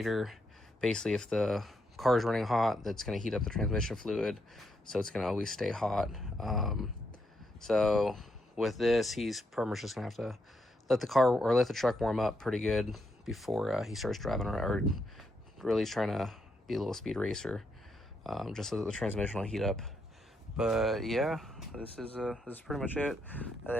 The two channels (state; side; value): normal; both; correlation 0.79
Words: basically if the car is running hot, that's going to heat up the transmission fluid, so it's going to always stay hot. So with this, he's pretty much just going to have to let the truck warm up pretty good before he starts driving around, or really trying to be a little speed racer, just so that the transmission will heat up. But yeah, this is pretty much it. And